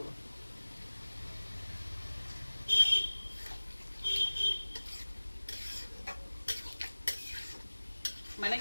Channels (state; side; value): inverted; both; correlation -1.00